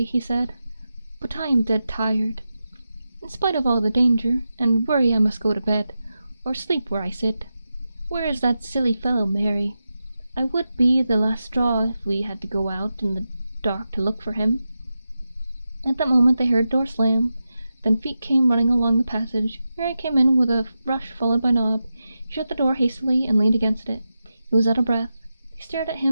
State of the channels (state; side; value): inverted; both; correlation -0.91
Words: he said, but I am dead tired. In spite of all the danger and worry, I must go to bed, or sleep where I sit. Where is that silly fellow, Mary? I would be the last straw if we had to go out in the dark to look for him." At that moment they heard a door slam, then feet came running along the passage. Mary came in with a rush, followed by Nob. He shut the door hastily and leaned against it. He was out of breath. They stared at